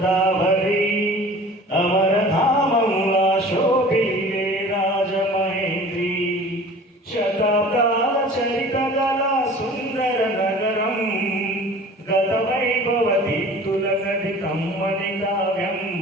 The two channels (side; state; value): both; normal; correlation 0.43